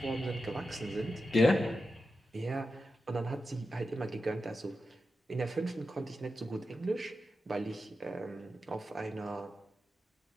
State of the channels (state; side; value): normal; both; correlation 0.90